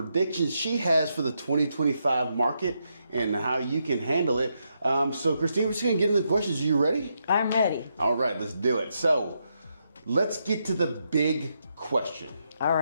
she has for the 2025 market and how you can handle it. So Christina, we're just going to get into the questions. Are you ready? I'm ready. All right, let's do it. So let's get to the big question. All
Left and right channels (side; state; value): both; inverted; correlation -0.81